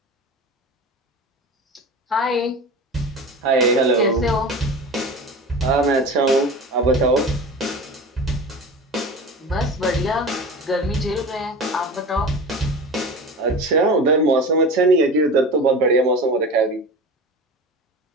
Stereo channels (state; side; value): normal; both; correlation 0.32